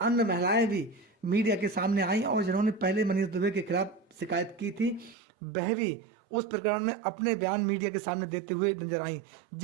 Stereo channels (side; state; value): left; drops out; at 5.2 s